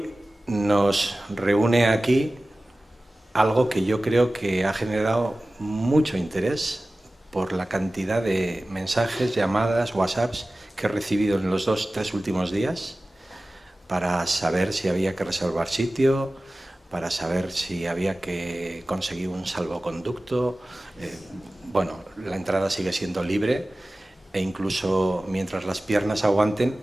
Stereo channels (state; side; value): normal; both; correlation 0.97